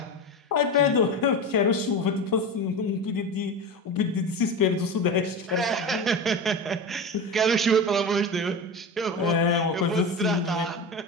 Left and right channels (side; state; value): both; normal; correlation 0.25